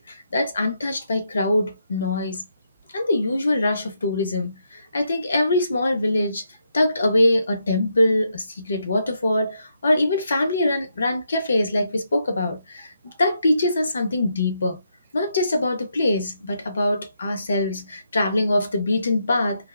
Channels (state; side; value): inverted; both; correlation -0.79